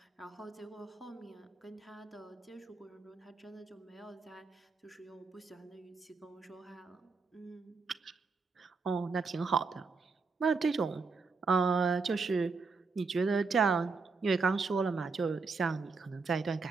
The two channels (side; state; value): left; quieter; 4.5 dB